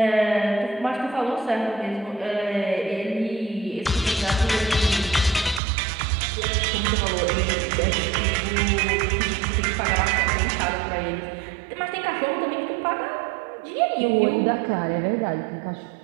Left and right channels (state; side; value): drops out; left; at 5.6 s